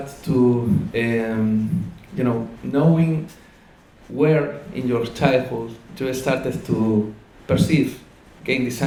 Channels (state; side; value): identical; both; correlation 1.00